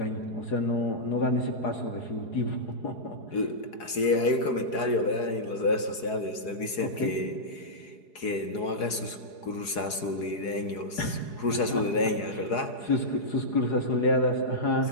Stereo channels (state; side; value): late; right; 4.8 ms